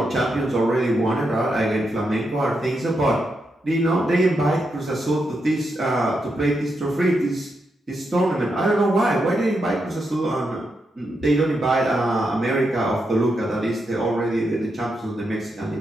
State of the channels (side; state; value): both; normal; correlation 0.84